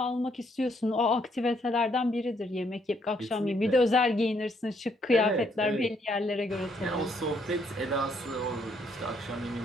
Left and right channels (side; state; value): both; normal; correlation 0.71